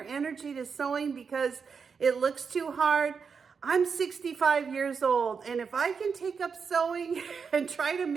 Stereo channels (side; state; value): left; quieter; 5.8 dB